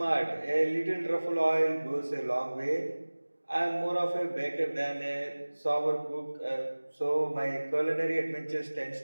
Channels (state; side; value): inverted; both; correlation -1.00